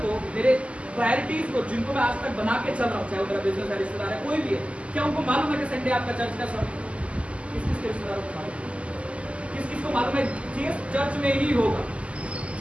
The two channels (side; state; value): left; late; 0.059 ms